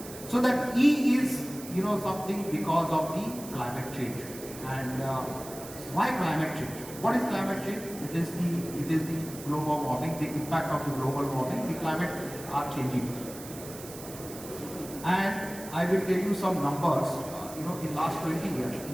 So that E is, something because of the climate change. And why climate change? What is climate change? It is the global warming, the impact of the global warming. The climate are changing. And I will tell you some numbers. In last 20 years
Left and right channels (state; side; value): noise; right; hiss, 14 dB below the sound